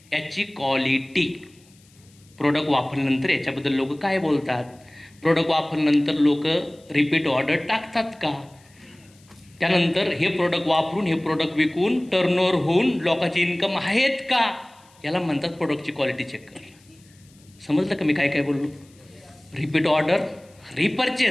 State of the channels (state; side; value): noise; left; hiss, 30 dB below the sound